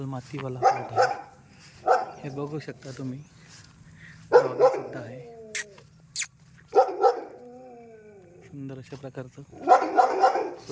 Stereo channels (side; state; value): both; identical; correlation 1.00